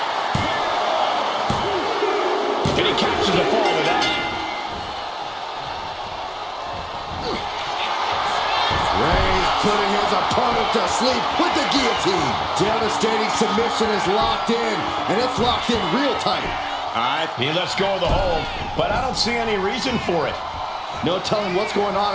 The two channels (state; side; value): identical; both; correlation 1.00